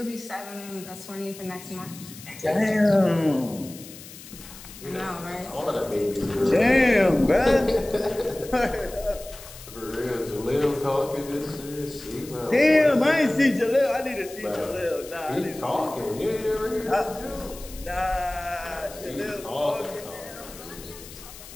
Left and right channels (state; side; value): noise; left; hiss, 16 dB below the sound